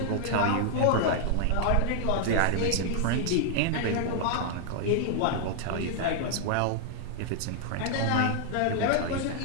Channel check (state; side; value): different; both; correlation -0.01